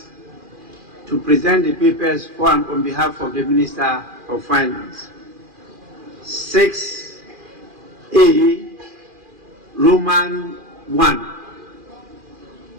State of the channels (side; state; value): left; late; 2.4 ms